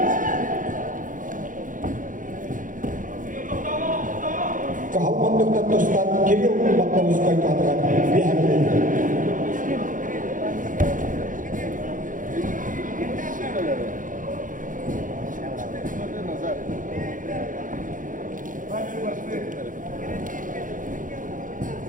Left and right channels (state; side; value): late; left; 0.38 ms